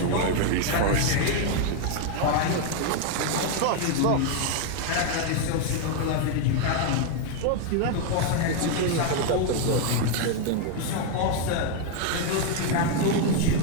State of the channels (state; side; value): different; both; correlation 0.01